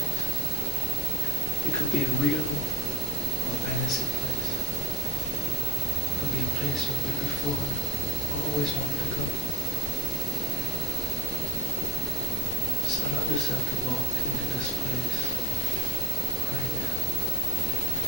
It could be a real or fantasy place. It could be a place you've been before or always wanted to go. Just allow yourself to walk into this place right now.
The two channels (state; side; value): normal; both; correlation 0.53